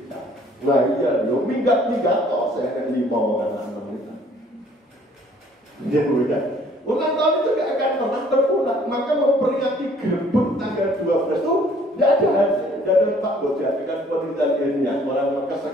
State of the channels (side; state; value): both; normal; correlation 0.58